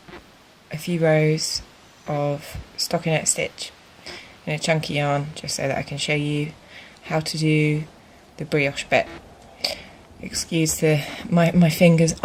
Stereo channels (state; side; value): identical; both; correlation 1.00